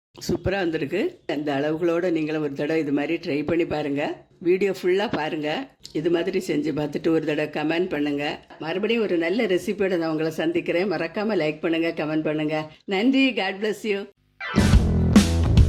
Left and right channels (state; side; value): identical; both; correlation 1.00